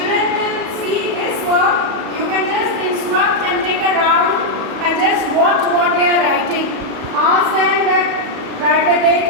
will see this work, you can just instruct and take a round and just watch what they are writing. Ask them that write the date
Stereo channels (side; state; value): left; late; 37 ms